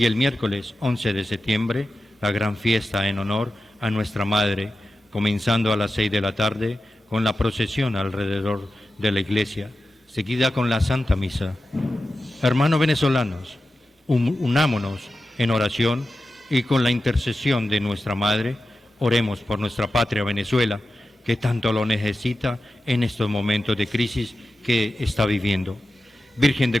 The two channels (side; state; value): both; normal; correlation 0.92